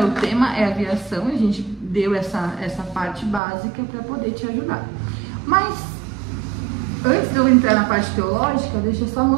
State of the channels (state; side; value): drops out; left; at 3.4 s